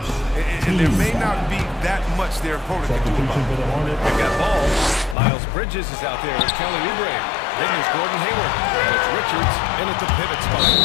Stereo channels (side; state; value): right; drops out; at 5.2 s